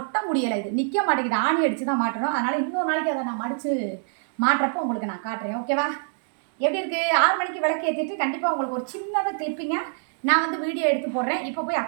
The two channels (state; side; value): silent; left; digital silence